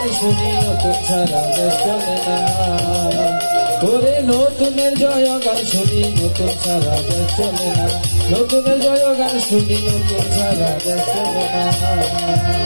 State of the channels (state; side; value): inverted; both; correlation -1.00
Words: শুনি নতুন ছাড়া দেশ চলে না। ওরে নতুনের জয় গান শুনি নতুন ছাড়া দেশ চলে না, নতুনের জয় গান শুনি নতুন ছাড়া দেশ চলে না।